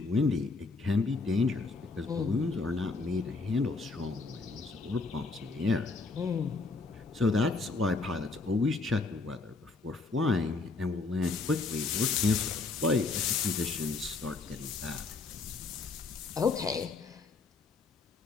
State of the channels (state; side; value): quieter; right; 3.8 dB